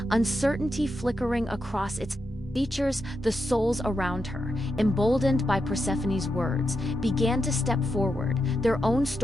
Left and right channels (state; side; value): normal; both; correlation 0.85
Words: uncertainty flickering across its features. The souls around her, emboldened by Persephone's words, began to step forward, their own